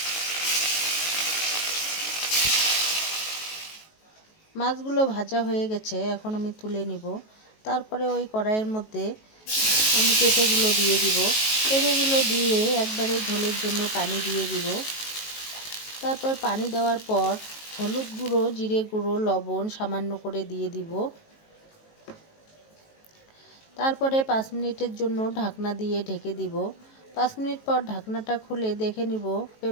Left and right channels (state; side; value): late; right; 19 ms